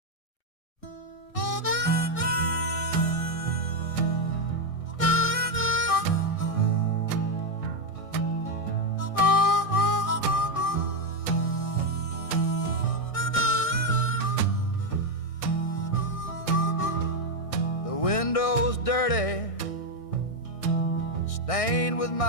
Windows dirty, stained with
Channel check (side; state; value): right; late; 1.6 ms